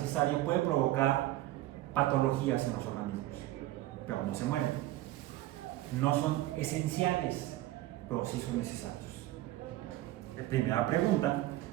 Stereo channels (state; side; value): quieter; left; 15.9 dB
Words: puede provocar patologías en los organismos, pero no se mueren. No son esenciales, pero sí son necesarios. Primera pregunta: